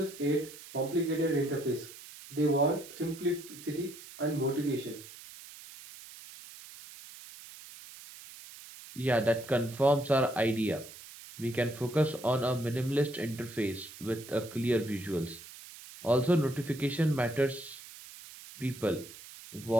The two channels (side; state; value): right; noise; hiss, 16 dB below the sound